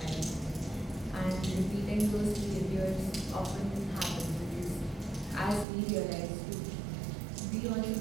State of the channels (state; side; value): drops out; left; at 5.7 s